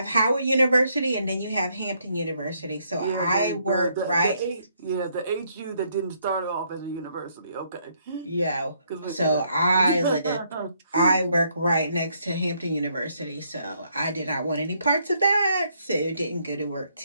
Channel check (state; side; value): inverted; both; correlation -0.72